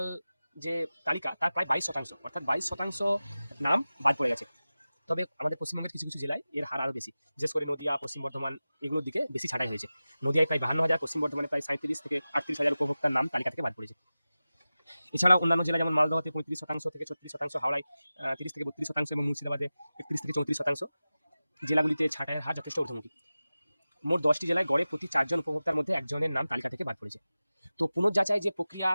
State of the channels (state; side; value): inverted; both; correlation -0.96